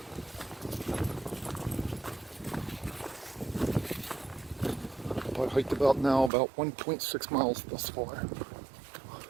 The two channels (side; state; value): left; drops out; at 6.3 s